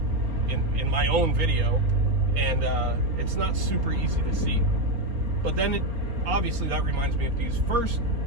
in my own video? And it's not super easy to see. But then obviously that reminds me of these first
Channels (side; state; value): left; late; 4.3 ms